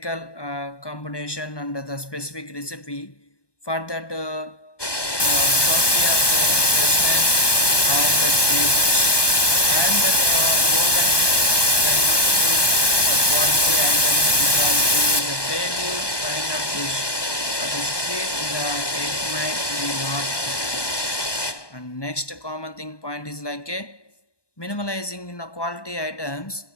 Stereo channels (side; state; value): right; late; 1.2 ms